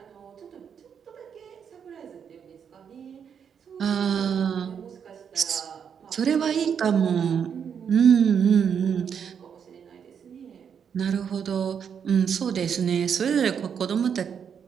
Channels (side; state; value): left; quieter; 7.5 dB